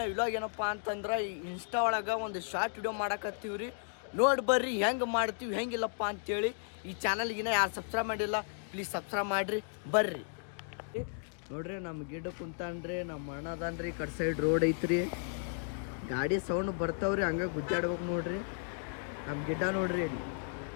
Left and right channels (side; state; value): right; silent; digital silence